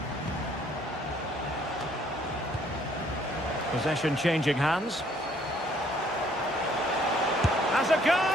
Possession changing hands. Has a goal!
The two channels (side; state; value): both; normal; correlation 0.63